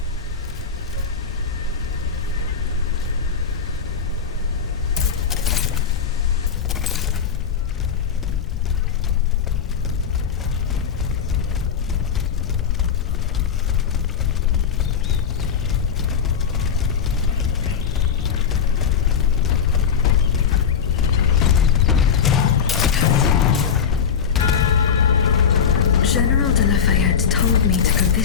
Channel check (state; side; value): quieter; right; 7.0 dB